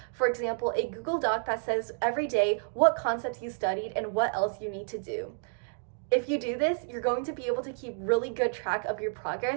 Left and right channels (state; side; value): silent; left; 58 dB below the other